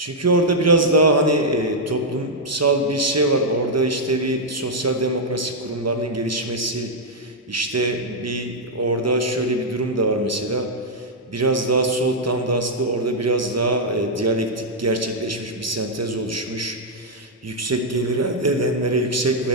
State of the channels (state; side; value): normal; both; correlation -0.04